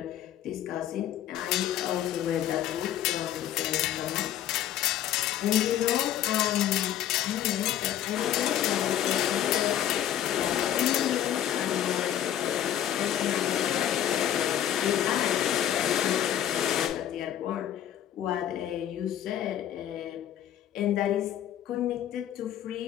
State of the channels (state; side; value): quieter; right; 11.3 dB